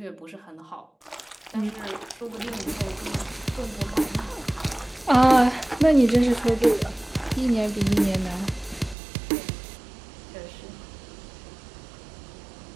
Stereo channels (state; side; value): drops out; left; at 9.0 s